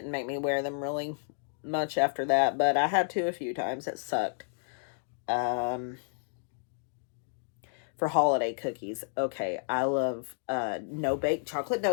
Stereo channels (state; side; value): silent; right; digital silence